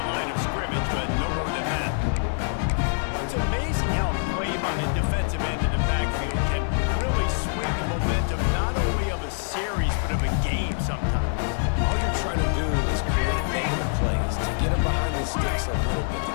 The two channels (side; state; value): right; silent; digital silence